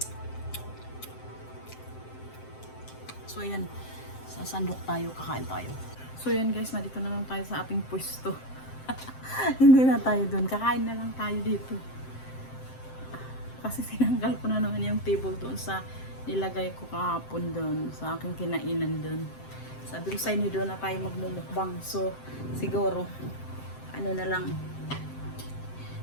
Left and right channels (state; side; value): late; right; 7.7 ms